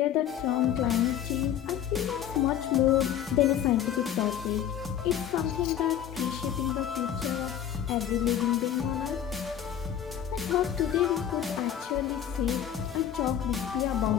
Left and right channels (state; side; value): quieter; right; 10.0 dB